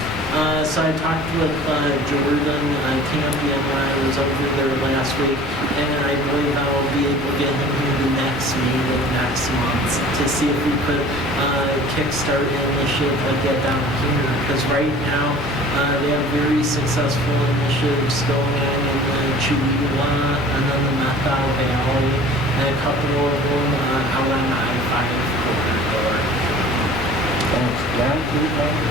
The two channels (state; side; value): normal; both; correlation 0.46